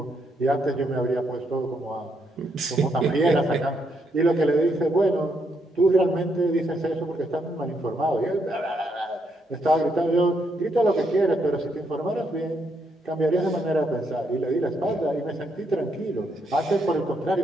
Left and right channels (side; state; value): both; normal; correlation 0.76